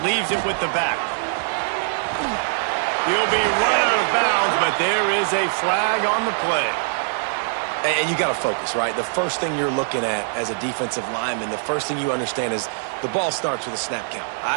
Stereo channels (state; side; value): silent; left; digital silence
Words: Leaves it with the back. He'll be run out of bounds, but there is a flag on the play. And you got to focus, right? The first thing you're looking at as a defensive lineman, the first thing you understand is the ball starts with a snap count.